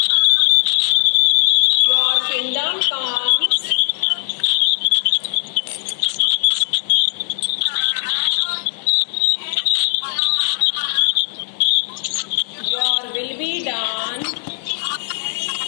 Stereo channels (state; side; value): silent; right; digital silence